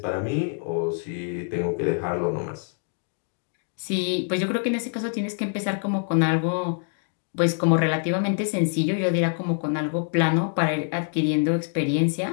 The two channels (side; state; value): right; silent; 61 dB below the other